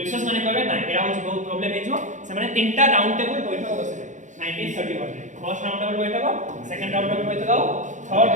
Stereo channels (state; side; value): late; left; 0.36 ms